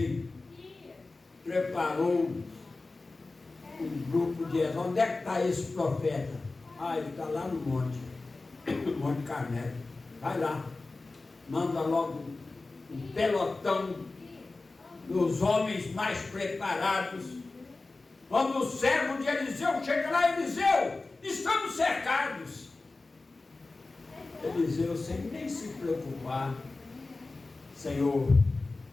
preparou um grupo de... Onde é que está esse profeta? Ah, ele está lá no monte. No Monte Carmelo. Vai lá. Manda logo um pelotão dos homens mais preparados. Quando o servo de Eliseu chega lá, Eliseu, estamos cercados. Eliseu, sem nem se preocupar: Senhor,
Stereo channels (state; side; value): quieter; right; 3.4 dB